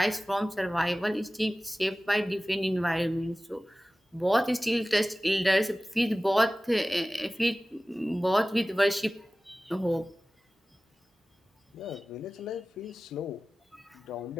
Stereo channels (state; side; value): normal; both; correlation 0.97